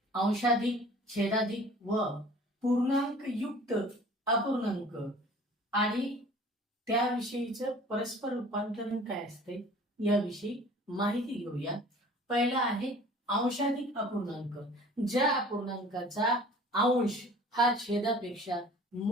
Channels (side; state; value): both; normal; correlation 0.47